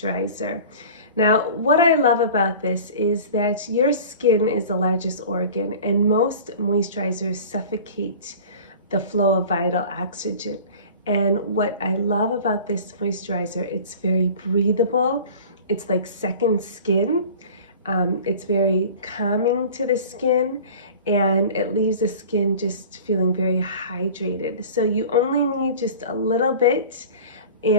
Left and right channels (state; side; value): inverted; both; correlation -0.41